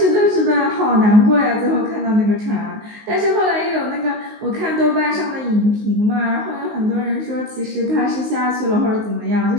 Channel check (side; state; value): left; late; 19 ms